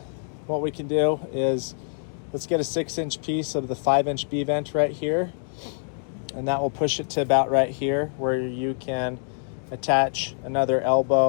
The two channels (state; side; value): silent; right; digital silence